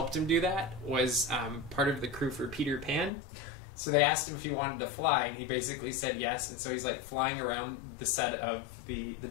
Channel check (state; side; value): drops out; right; at 3.1 s